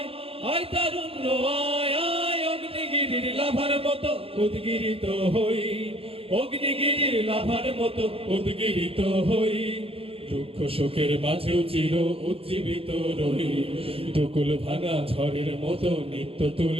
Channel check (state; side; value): late; left; 0.27 ms